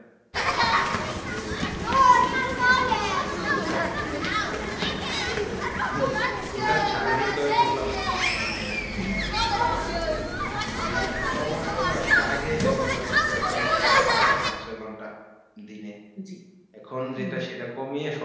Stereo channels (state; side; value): identical; both; correlation 1.00